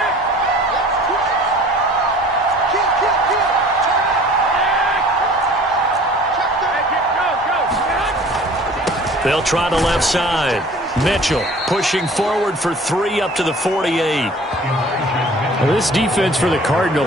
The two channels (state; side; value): normal; both; correlation 0.48